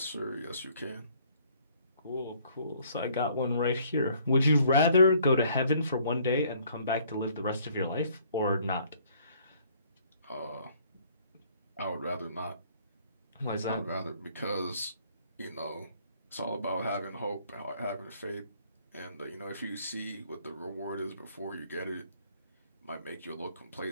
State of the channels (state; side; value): inverted; both; correlation -0.61